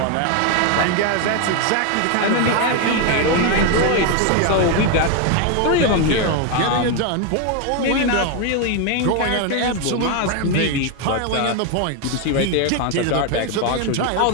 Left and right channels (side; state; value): both; different; correlation 0.01